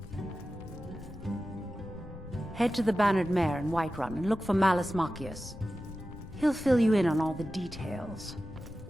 Head to the Bannered Mare in Whiterun and look for Malus Machius. He'll fill you in on all the details.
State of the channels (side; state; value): left; noise; rumble, 17 dB below the sound